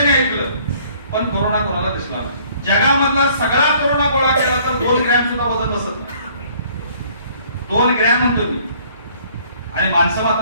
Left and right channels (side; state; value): both; inverted; correlation -0.58